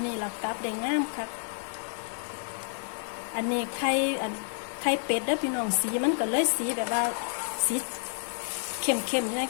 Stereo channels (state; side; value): silent; right; digital silence